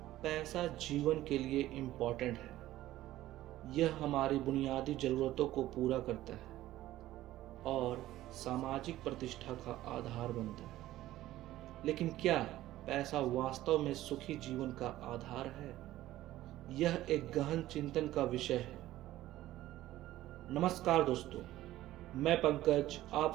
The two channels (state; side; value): quieter; left; 15.0 dB